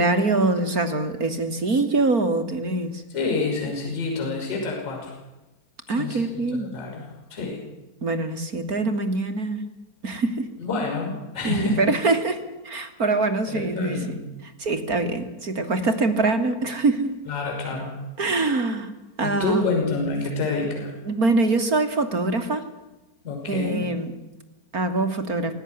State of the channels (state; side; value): late; left; 4.4 ms